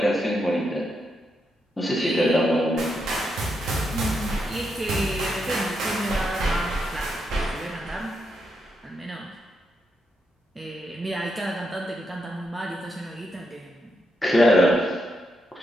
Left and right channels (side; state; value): both; normal; correlation 0.82